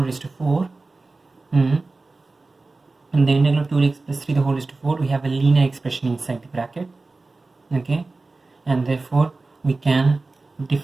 raised to 4, and the integral of 2x plus 3 the whole raised to 4, we have a linear expression inside the bracket. Okay, and therefore we can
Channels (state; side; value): quieter; left; 3.5 dB